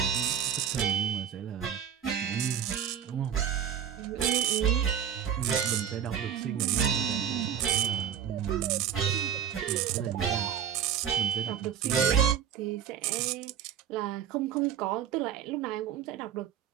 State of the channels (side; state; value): left; quieter; 8.8 dB